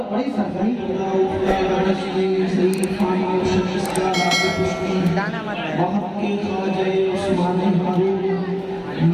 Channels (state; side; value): identical; both; correlation 1.00